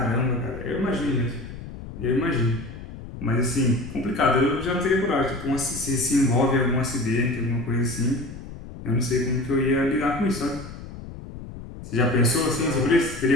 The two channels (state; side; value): noise; left; rumble, 12 dB below the sound